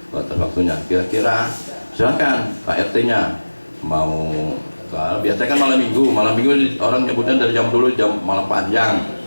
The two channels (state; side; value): inverted; both; correlation -1.00